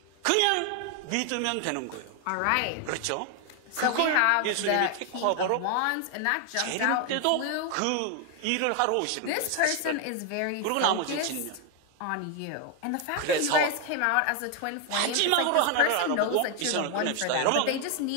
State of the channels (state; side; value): different; both; correlation 0.01